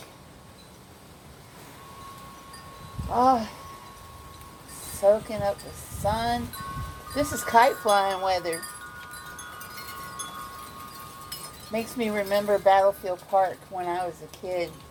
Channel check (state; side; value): identical; both; correlation 1.00